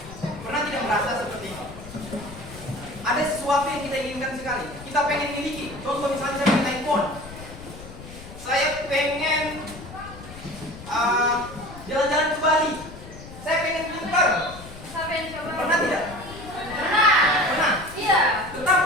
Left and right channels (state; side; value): noise; left; rumble, 15 dB below the sound